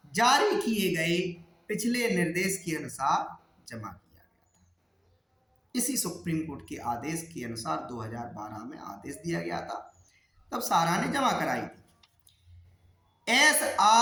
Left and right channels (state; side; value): identical; both; correlation 1.00